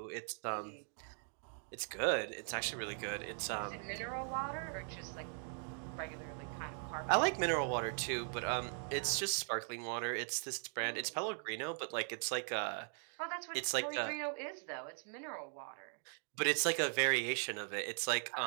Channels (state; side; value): silent; left; 51 dB below the other